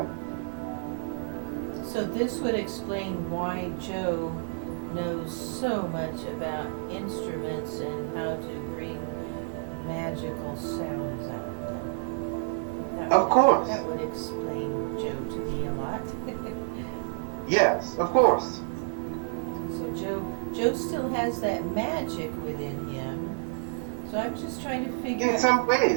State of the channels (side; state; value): left; silent; digital silence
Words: So this would explain why Joe knows so much about instruments and how to bring magical sounds out of them. Of course. That would explain Joe to me a lot. Yes, of course. So Joe still has that magic within him. So I'm just trying to figure out. In some